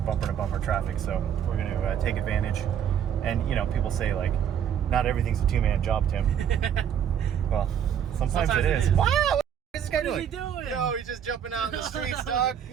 bumper to bumper traffic. So we're going to take advantage. And, you know, people say like, not everything's a 2-man job, Tim. Well, sometimes it is. Wow! What is this guy doing? What is he doing? Yo, he's just jumping out in the streets, dog.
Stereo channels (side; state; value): left; quieter; 8.9 dB